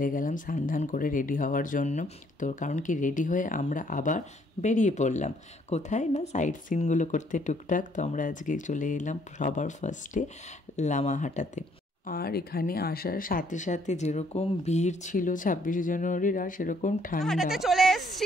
গেলাম স্নান করে রেডি হওয়ার জন্য। তো কারণ কি রেডি হয়ে আমরা আবার বেরিয়ে পড়লাম কোথায় না সাইট সিনগুলো করতে টুকটাক। তো আমরা আজকে চলে এলাম সবার ফার্স্টে লামাহাটাতে। আর এখানে আসার সাথে সাথে যেরকম ভিড় ছিল 26শে জানুয়ারির আর সেরকম ঠান্ডা। চলে এসেছি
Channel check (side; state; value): both; normal; correlation 0.66